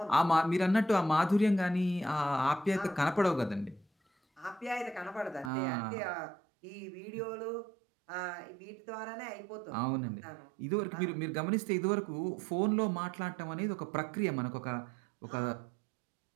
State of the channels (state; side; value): drops out; left; at 5.5 s